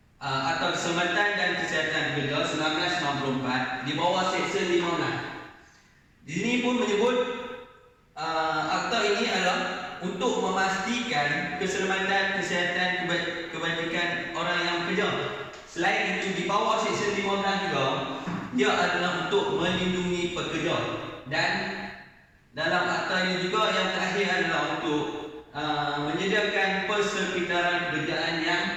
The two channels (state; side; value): identical; both; correlation 1.00